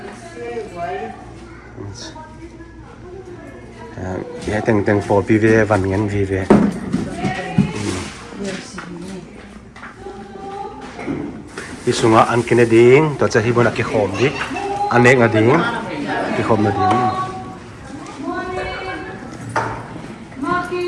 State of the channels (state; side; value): identical; both; correlation 1.00